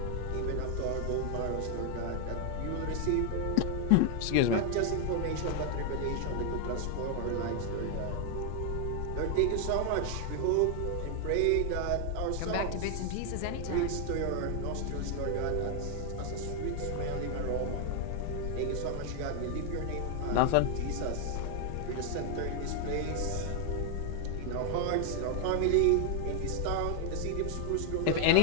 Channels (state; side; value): different; both; correlation 0.00